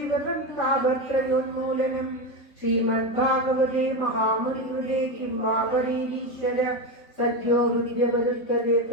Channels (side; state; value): right; late; 3.7 ms